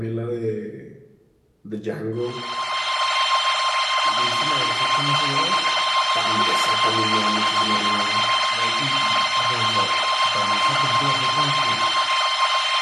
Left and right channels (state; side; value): identical; both; correlation 1.00